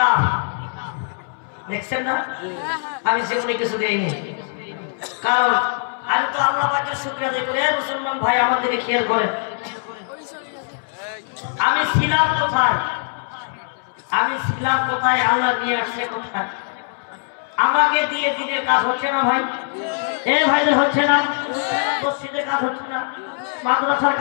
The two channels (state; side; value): silent; right; 65 dB below the other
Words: দেখছেন না আমি সেগুলো কিছু দেইনি কারণ আমি তো আল্লাহ পাকের শুকরিয়া আদায় করি মুসলমান ভাই আমার দিকে খেয়াল করেন আমি ছিলাম কোথায় আল্লাহ নিয়ে আসছে কোথায় আমাকে দিয়ে দিনের কাজ হচ্ছে না ভাই এ ভাইদের হচ্ছে না মসজিদের কাজ হচ্ছে না মাদ্রাসার